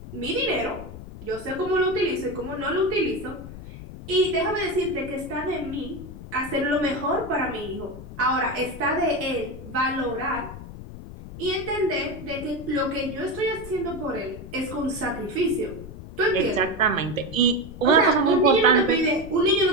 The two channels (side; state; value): left; noise; rumble, 13 dB below the sound